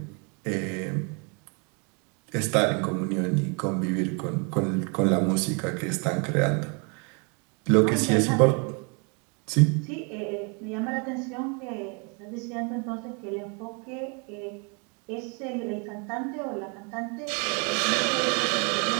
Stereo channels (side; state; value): left; quieter; 34.5 dB